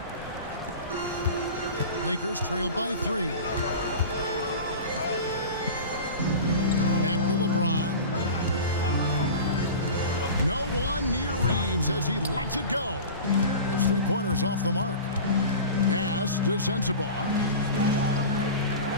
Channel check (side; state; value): both; inverted; correlation -0.33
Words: Lakers trail by 3. Back to LeBron. No one near Reeves as he lets it go. His three-pointers off the mark. Pass to Sensabaugh.